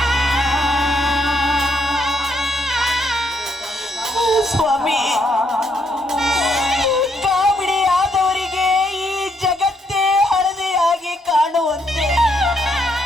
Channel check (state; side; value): normal; both; correlation 0.74